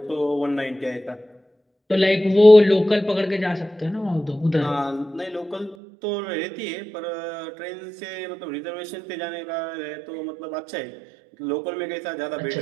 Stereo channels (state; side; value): drops out; left; at 5.8 s